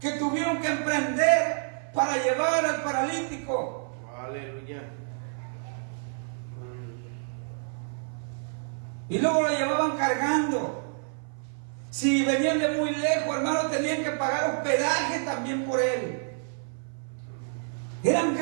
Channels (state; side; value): silent; left; 59 dB below the other